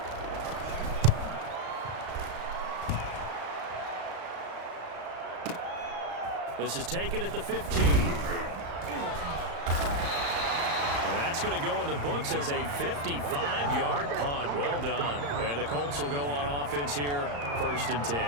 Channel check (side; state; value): left; late; 35 ms